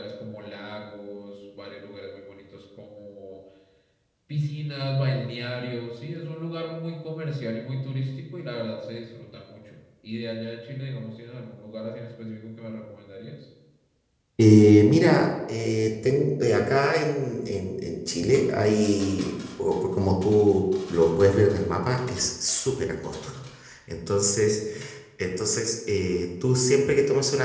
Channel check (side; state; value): both; identical; correlation 1.00